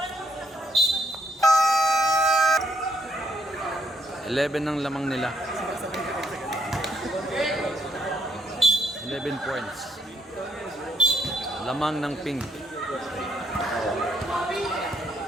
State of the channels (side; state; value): both; normal; correlation 0.73